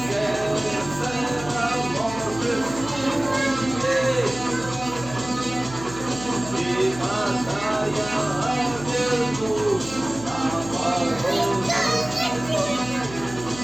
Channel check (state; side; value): noise; right; hum, 15 dB below the sound